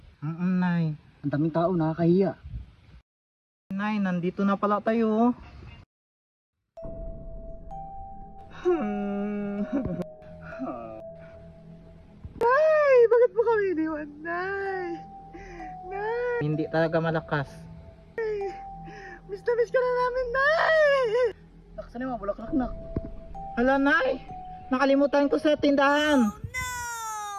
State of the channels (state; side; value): identical; both; correlation 1.00